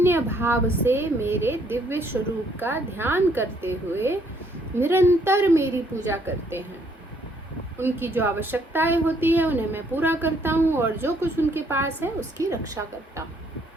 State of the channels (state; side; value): normal; both; correlation 0.67